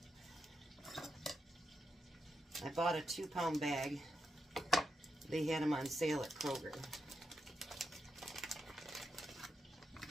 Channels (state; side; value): normal; both; correlation 0.85